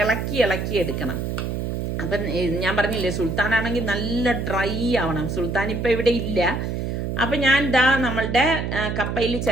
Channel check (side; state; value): right; noise; hum, 2 dB below the sound